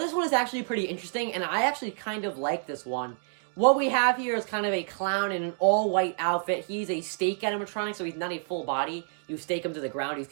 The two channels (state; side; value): silent; left; 59 dB below the other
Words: one is actually pretty interesting, and I actually kind of like this one. What we have here is kind of a clown in an all-white outfit. He's a stake animatronic, so he's not a full body. You stake him to the ground. He's